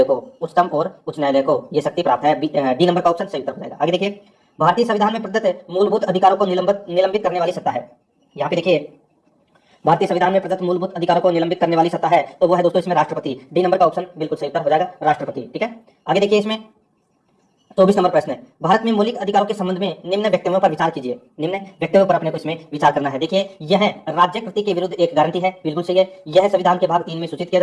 को। उच्चतम और उच्च न्यायालय को ये शक्ति प्राप्त है। डी नंबर का ऑप्शन सही उत्तर हो जाएगा। आगे देखिए, भारतीय संविधान में प्रदत्त मूलभूत अधिकारों को निलंबित करने वाली सत्ता है। यहाँ पे देखिए, भारतीय संविधान में प्रदत्त मूलभूत अधिकारों को निलंबित करने वाली सत्ता है, तो वो है दोस्तों इसमें राष्ट्रपति। डी नंबर का ऑप्शन बिल्कुल सही उत्तर हो जाएगा, राष्ट्रपति। ठीक है, आगे देखिए, इसमें 24 नंबर प्रश्न है, भारत में मौलिक अधिकारों के संबंध में निम्न वक्तव्यों पर विचार कीजिए। निम्न वक्तव्यों पर अपने को इसमें विचार करना है। देखिए, यह राज्य कृति के विरुद्ध एक गारंटी है, बिल्कुल सही है। यह संविधान के भाग 3 में सूचित किया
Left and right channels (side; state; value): both; identical; correlation 1.00